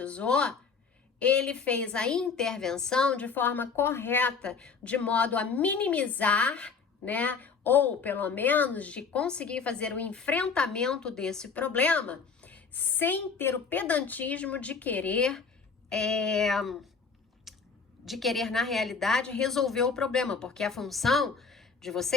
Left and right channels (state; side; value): quieter; right; 5.3 dB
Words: ele fez a intervenção de forma correta, de modo a minimizar, né, ou pelo menos de conseguir fazer o enfrentamento desse problema, sem ter o pedantismo de querer, na realidade, resolver o problema, porque a função de